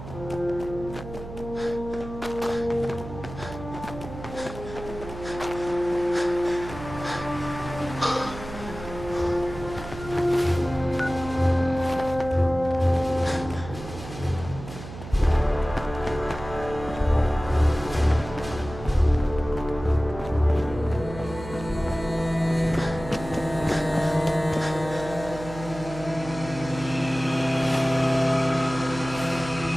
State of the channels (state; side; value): noise; right; hum, 12 dB below the sound